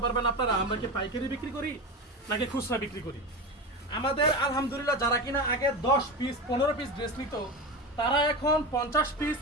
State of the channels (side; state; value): both; normal; correlation 0.23